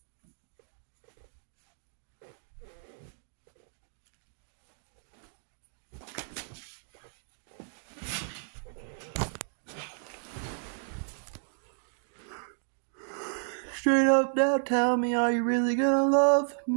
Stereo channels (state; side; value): silent; left; digital silence